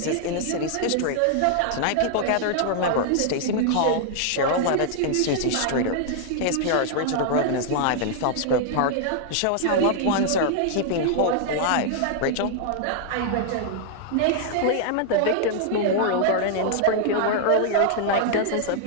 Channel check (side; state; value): both; different; correlation -0.01